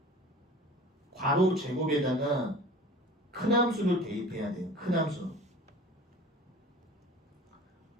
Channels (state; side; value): normal; both; correlation 0.42